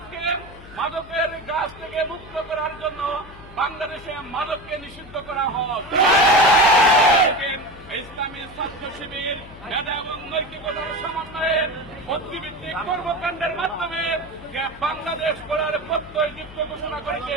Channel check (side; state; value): left; noise; hum, 19 dB below the sound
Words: মাদকের গাছ থেকে মুক্ত করার জন্য বাংলাদেশে মাদককে নিষিদ্ধ করা হোক। ইসলামী ছাত্র শিবির মেধা এবং নৈতিকতার সমন্বয়ে বুদ্ধিভিত্তিক কর্মকাণ্ডের মাধ্যমে বাংলাদেশ গড়ার প্রত্যয় দীপ্ত ঘোষণা করেছে।